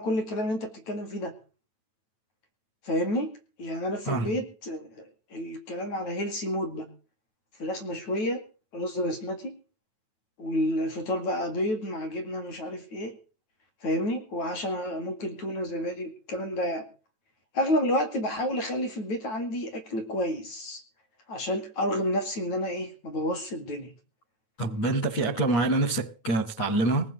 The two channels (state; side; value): late; right; 9.1 ms